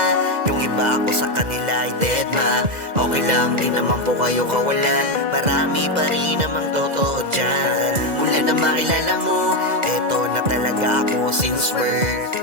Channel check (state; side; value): late; left; 2.0 ms